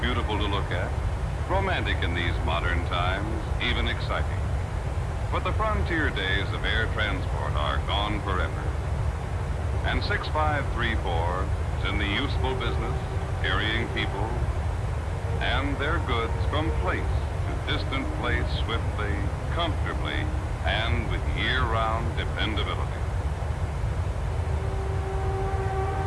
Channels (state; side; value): identical; both; correlation 1.00